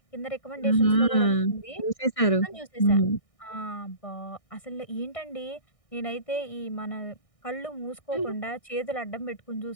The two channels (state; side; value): late; right; 1.6 ms